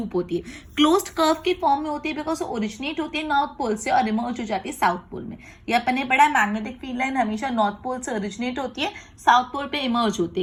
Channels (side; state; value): both; identical; correlation 1.00